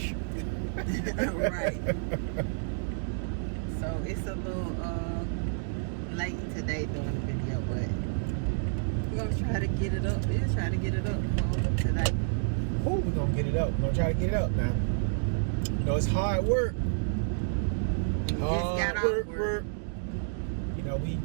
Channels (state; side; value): silent; left; digital silence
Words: right. So it's a little late today doing the video, but we're gonna try to get it up. We'll try to get it up today. Oh, we're gonna get it up. We're gonna try to get it up now. You know, it's hard work. Work. You know,